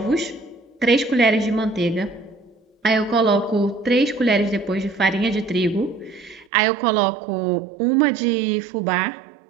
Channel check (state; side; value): drops out; left; at 6.5 s